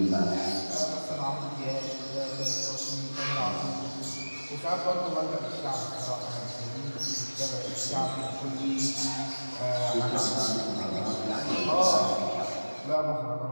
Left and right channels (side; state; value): both; inverted; correlation -1.00